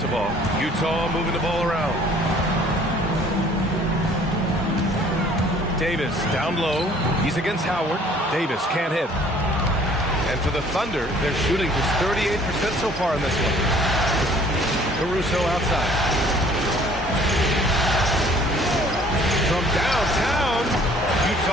Utah moving the ball around. Davis down low. He's against Howard. Davis can't hit. And for the Thunder, they're shooting just 38% so far in this one. Caruso outside. From downtown,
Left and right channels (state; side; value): normal; both; correlation 0.55